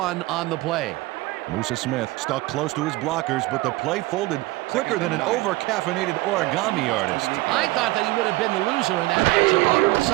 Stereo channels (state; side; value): quieter; left; 20.5 dB